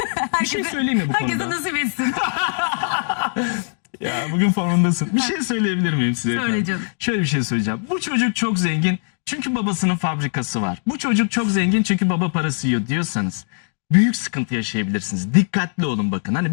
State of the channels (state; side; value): silent; right; 65 dB below the other